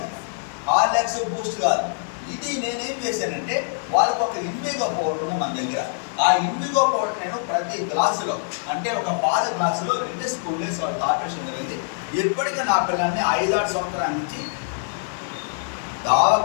హార్లిక్స్, బూస్ట్ కాదు. ఇది నేనేం చేశానంటే వాళ్ళకు ఒక ఇన్విగో పౌడర్ ఉంది మన దగ్గర. ఆ ఇన్విగో పౌడర్ నేను ప్రతి గ్లాసులో, అంటే ఒక పాల గ్లాసులో 2 స్పూన్లు వేసి వాళ్ళు తాపేషన్ జరిగింది. ఎప్పటికీ నా పిల్లల్ని 5-6 సంవత్సరాల నుంచి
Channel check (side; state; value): right; silent; 63 dB below the other